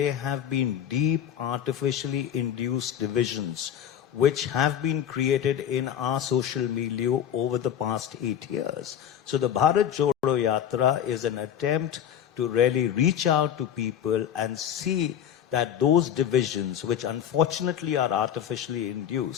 have been deep artificially induced divisions which have been created in our social milieu over the past 8 years. So the Bharat Jodo Yatra is an attempt to really reach out to people and see that those divisions, which unfortunately are artificially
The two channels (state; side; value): quieter; right; 9.6 dB